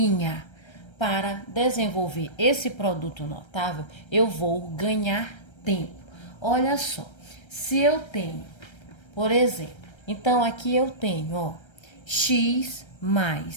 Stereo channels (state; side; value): late; right; 1.3 ms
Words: para desenvolver esse produto notável, eu vou ganhar tempo. Olha só, se eu tenho, por exemplo, então aqui eu tenho, ó, x